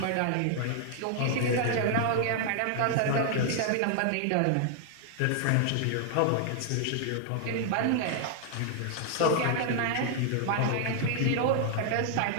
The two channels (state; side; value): different; both; correlation 0.00